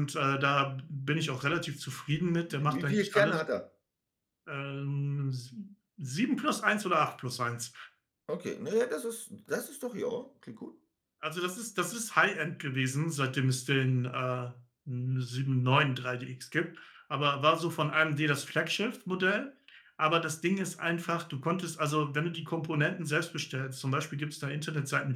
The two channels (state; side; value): identical; both; correlation 1.00